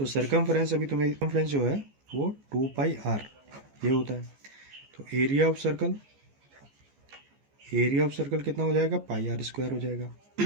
सर्कमफ्रेंस, अभी तुम्हें सर्कमफ्रेंस जो है वो 2πr ये होता है। तो area of circle, area of circle कितना हो जाएगा? πr² हो जाएगा।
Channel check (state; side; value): late; left; 14 ms